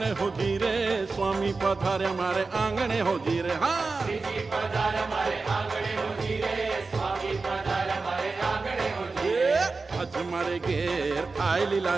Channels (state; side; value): quieter; left; 4.0 dB